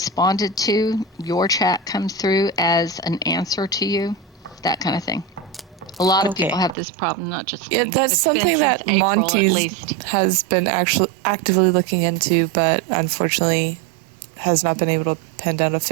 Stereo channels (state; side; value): drops out; left; at 6.8 s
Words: to, your chat comes through as an answer to you, that kind of thing. A lot of people have this problem, not just me. Yeah, that's It's something been that since April, at Monty least. has been actually actively looking into, but unfortunately has not been able to pin down a